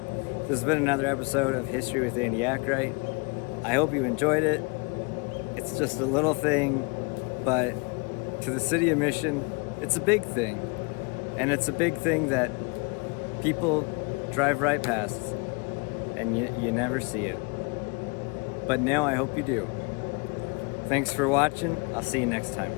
This has been another episode of History with Andy Ackright. I hope you enjoyed it. It's just a little thing, but to the city of Mission, it's a big thing. And it's a big thing that people drive right past and you never see it. But now I hope you do. Thanks for watching. I'll see you next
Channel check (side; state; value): right; quieter; 31.0 dB